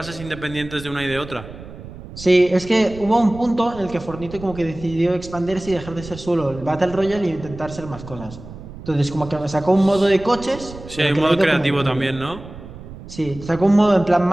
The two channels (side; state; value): right; noise; rumble, 15 dB below the sound